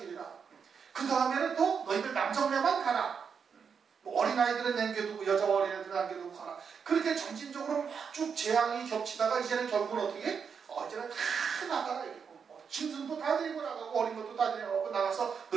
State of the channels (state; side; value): quieter; left; 6.5 dB